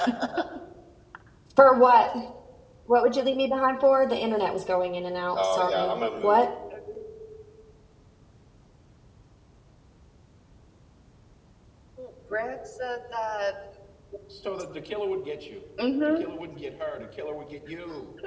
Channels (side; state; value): both; identical; correlation 1.00